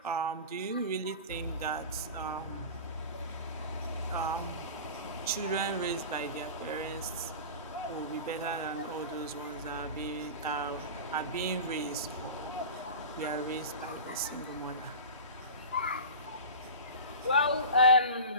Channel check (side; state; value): both; inverted; correlation -0.32